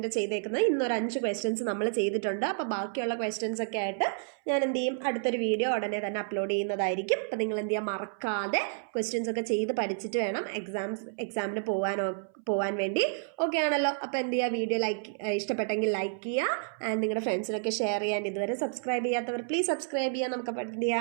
ചെയ്തേക്കുന്നത്. ഇന്നൊരു 5 ക്വസ്റ്റ്യൻസ് നമ്മൾ ചെയ്തിട്ടുണ്ട്. അപ്പോൾ ബാക്കിയുള്ള ക്വസ്റ്റ്യൻസ് ഒക്കെ ആയിട്ട് ഞാൻ എന്ത് ചെയ്യും? അടുത്തൊരു വീഡിയോ ഉടനെ തന്നെ അപ്ലോഡ് ചെയ്യുന്നതായിരിക്കും. അപ്പോൾ നിങ്ങൾ എന്ത് ചെയ്യുക? മറക്കാതെ ക്വസ്റ്റ്യൻസ് ഒക്കെ ചെയ്ത് പഠിച്ചിട്ട് വേണം എക്സാമിന് പോകാൻ വേണ്ടി. ഓക്കെ ആണല്ലോ? അപ്പോൾ എന്ത് ചെയ്യുക? വീഡിയോ ഇഷ്ടപ്പെട്ടെങ്കിൽ ലൈക്ക് ചെയ്യുക, നിങ്ങളുടെ ഫ്രണ്ട്സിനൊക്കെ ഷെയർ ചെയ്യാൻ. ഇതുവരെ സബ്സ്ക്രൈബ് ചെയ്യാത്തവർ പ്ലീസ് സബ്സ്ക്രൈബ് ചെയ്യുക. നമുക്ക്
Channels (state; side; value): silent; left; 58 dB below the other